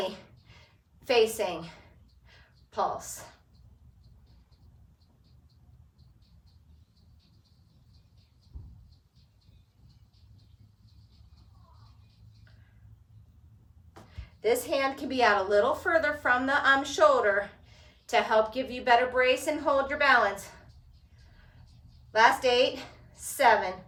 facing pulse. This hand can be out a little further from the shoulder to help give you better brace and hold your balance. Last 8, 7,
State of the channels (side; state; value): both; identical; correlation 1.00